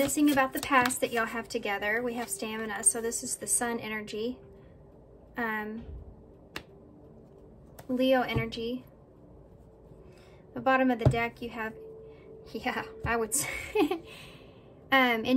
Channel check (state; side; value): identical; both; correlation 1.00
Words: about the past that y'all have together. We have stamina, so this is the Sun energy. Leo energy. The bottom of the deck you have, yeah, I would say,